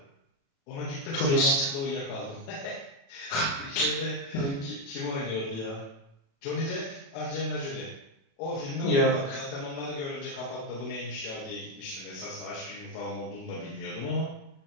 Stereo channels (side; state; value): right; late; 36 ms